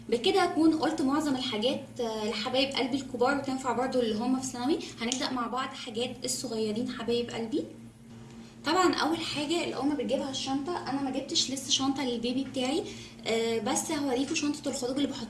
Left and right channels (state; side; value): identical; both; correlation 1.00